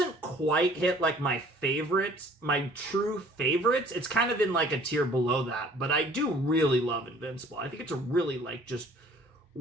quite hit like my favorites, my true favorites. It's kind of in like a tier below that, but I do really love Invincible. I think it's a really like just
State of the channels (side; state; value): both; normal; correlation 0.53